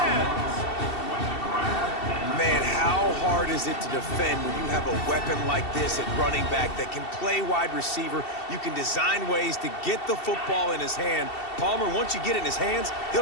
Man, is it to defend when you have a weapon like this at running back that can play wide receiver? You can design ways to get the football in his hand. Palmer, once you get it in his hands,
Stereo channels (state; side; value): late; right; 2.7 ms